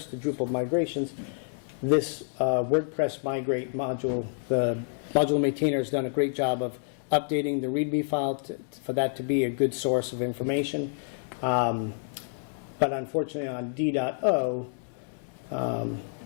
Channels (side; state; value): right; silent; digital silence